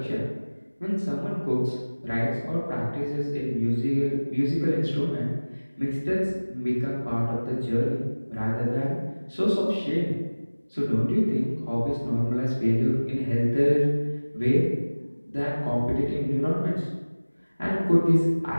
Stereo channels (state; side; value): inverted; both; correlation -1.00